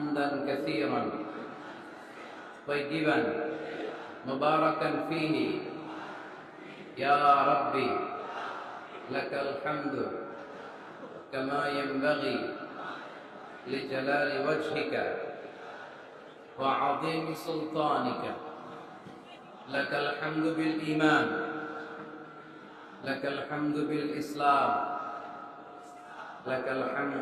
কাসীরান طيبا مباركا فيه يا ربي لك الحمد كما ينبغي لجلال وجهك وعظيم سلطانك لك الحمد بالإيمان لك الحمد بالإسلام لك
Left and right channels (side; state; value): both; identical; correlation 1.00